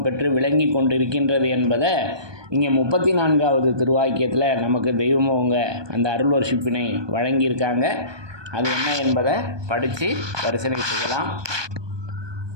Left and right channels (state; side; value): late; left; 1.2 ms